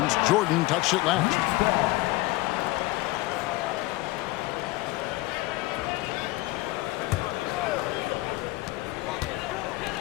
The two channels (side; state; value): right; quieter; 19.7 dB